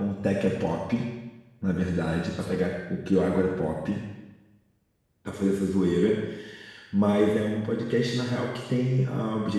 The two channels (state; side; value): identical; both; correlation 1.00